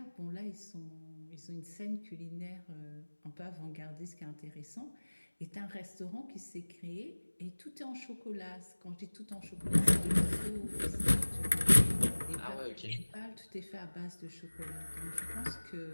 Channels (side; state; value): both; inverted; correlation -1.00